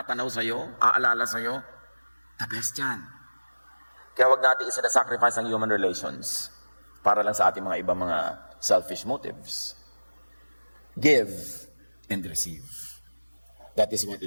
sa'yo, aalala sa'yo, the best yan. Kaya wag natin isa-sacrifice ang human relations para lang sa ating mga ibang mga selfish motives. Give and receive. That is what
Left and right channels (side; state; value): both; inverted; correlation -1.00